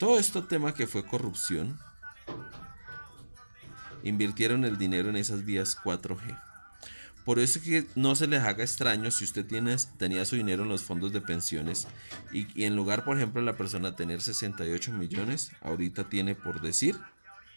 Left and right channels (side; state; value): both; inverted; correlation -1.00